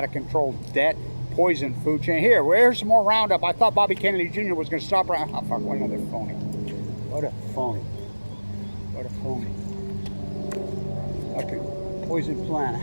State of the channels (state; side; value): inverted; both; correlation -1.00